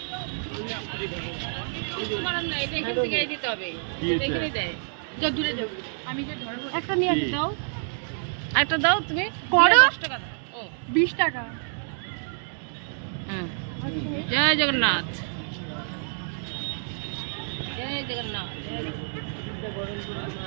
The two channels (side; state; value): left; silent; digital silence